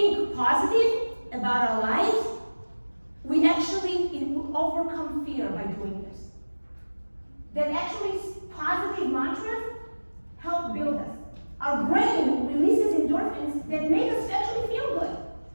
positive about our lives, we actually overcome fear by doing this. That actually positive mantras help build us. Our brain releases endorphins that make us actually feel good.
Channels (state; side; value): inverted; both; correlation -1.00